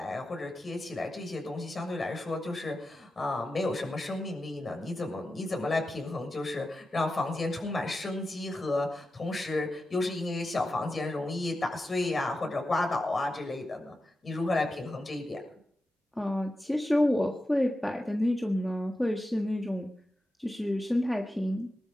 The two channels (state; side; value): normal; both; correlation 0.91